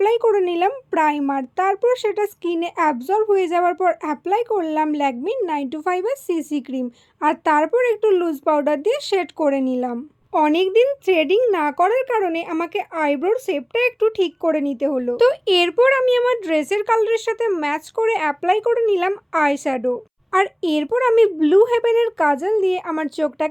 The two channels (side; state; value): both; identical; correlation 1.00